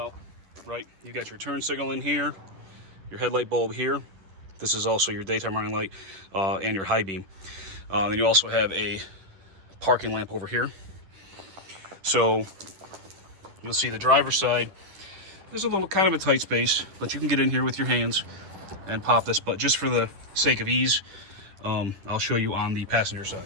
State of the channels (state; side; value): late; left; 10 ms